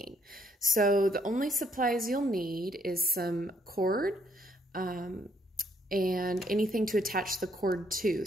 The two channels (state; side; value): normal; both; correlation 0.68